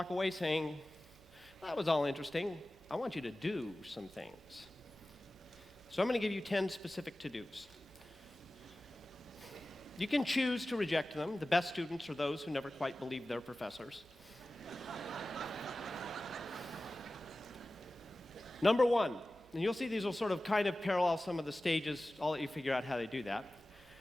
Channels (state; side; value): noise; right; hum, 26 dB below the sound